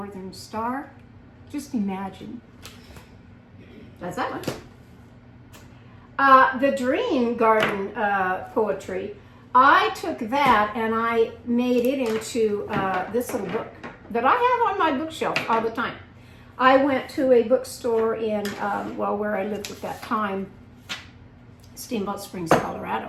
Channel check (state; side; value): identical; both; correlation 1.00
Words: star? Just imagine. That's that one. The Dream Garden poetry, I took that and I made it into this little book that I have on my bookshelf all the time. I went to a bookstore in, where I lived at that time, Steamboat Springs, Colorado.